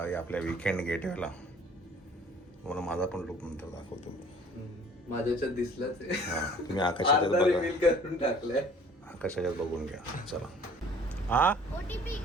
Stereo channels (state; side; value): normal; both; correlation 0.52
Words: आपल्या वीकेंड गेटवेला. मला माझा पण लुक नंतर दाखवतो. माझ्याच्यात दिसलंच आहे. हां, तुम्ही आकाशाच्यात अर्धा बघा. रिव्हील करून टाकलंय. आकाशाच्यात बघून घ्या. चला. हा, OTP